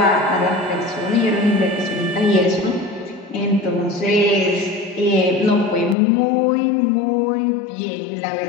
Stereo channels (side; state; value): right; drops out; at 6.0 s